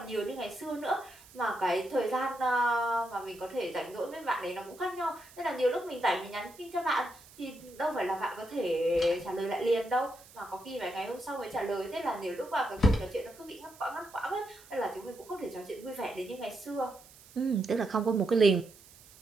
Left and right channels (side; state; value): right; noise; hiss, 22 dB below the sound